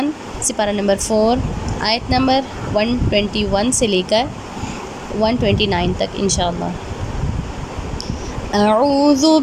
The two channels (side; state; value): both; identical; correlation 1.00